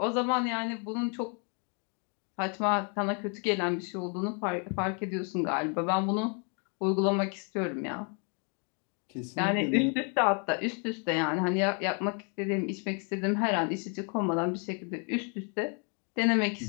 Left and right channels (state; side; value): quieter; right; 38.8 dB